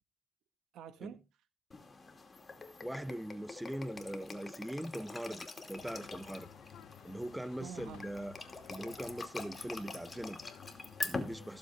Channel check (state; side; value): normal; both; correlation 0.93